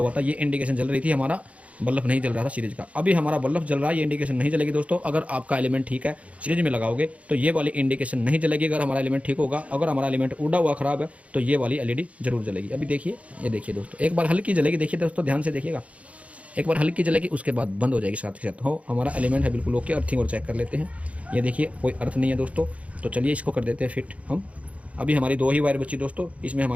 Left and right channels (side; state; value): left; late; 0.065 ms